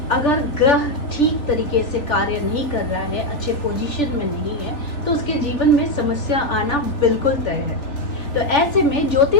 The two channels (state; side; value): late; right; 3.4 ms